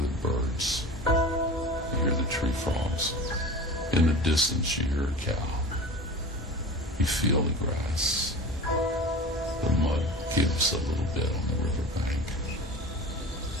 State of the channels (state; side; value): normal; both; correlation 0.35